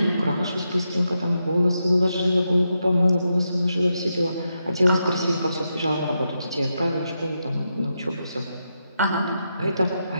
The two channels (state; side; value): inverted; both; correlation -0.85